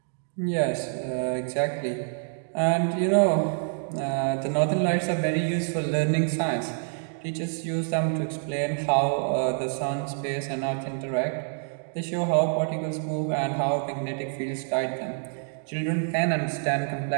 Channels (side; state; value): left; silent; 60 dB below the other